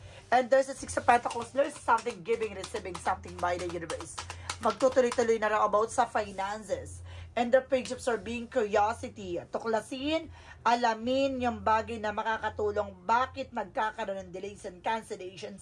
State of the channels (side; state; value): both; identical; correlation 1.00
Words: And there's a Six of Pentacles. There's something giving, receiving something by the universe. Magtutuloy-tuloy na rin about sa finances. And the Page of Swords being curiosity. Tuklasin, alamin yung bagay na makakatulong bakit nagkakaroon ng delays and